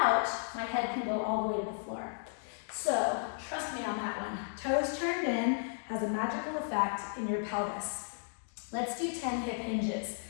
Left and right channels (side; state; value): right; silent; digital silence